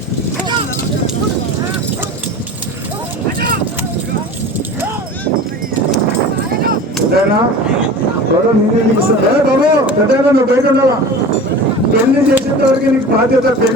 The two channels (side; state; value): both; normal; correlation 0.36